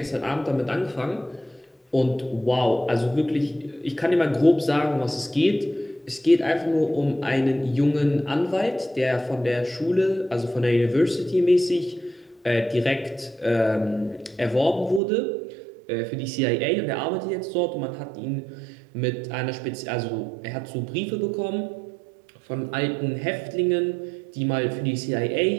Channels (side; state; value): left; drops out; at 15.0 s